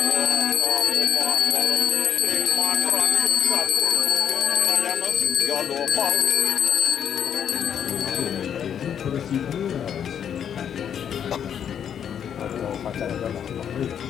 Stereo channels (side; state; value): right; quieter; 8.6 dB